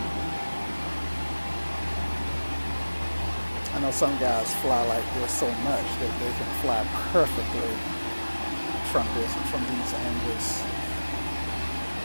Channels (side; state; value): both; inverted; correlation -1.00